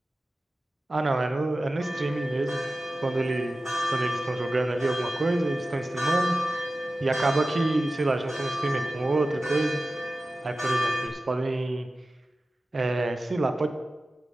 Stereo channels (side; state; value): both; normal; correlation 0.95